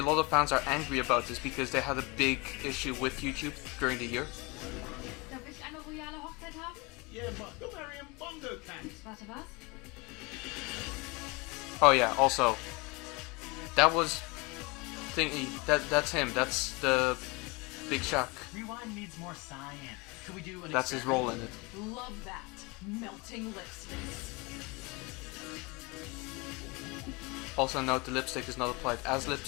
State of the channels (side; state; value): right; quieter; 26.8 dB